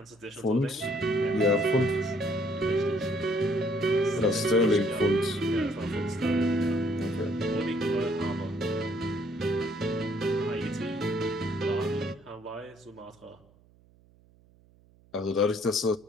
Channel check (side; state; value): right; noise; hum, 29 dB below the sound